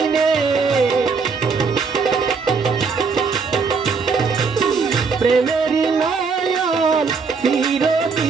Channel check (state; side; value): quieter; left; 5.0 dB